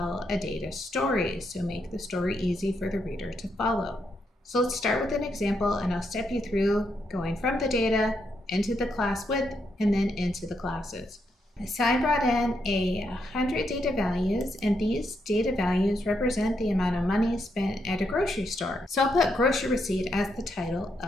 a data story, so make the story easy for the reader to follow. So let's start with an example, and I'll step you through going from the data into the class width and then into the classes. So I brought in 100 data values, and these data values represent the amount of money spent at a grocery store. So I'll put grocery receipt as the title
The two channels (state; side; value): normal; both; correlation 0.79